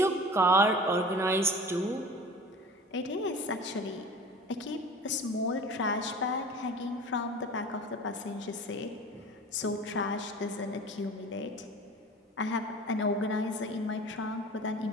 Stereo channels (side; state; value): both; normal; correlation 0.39